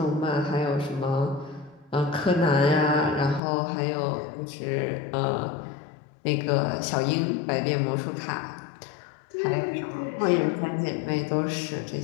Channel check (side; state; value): right; drops out; at 3.4 s